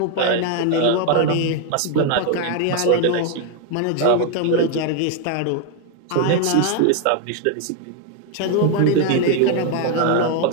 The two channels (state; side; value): different; both; correlation 0.01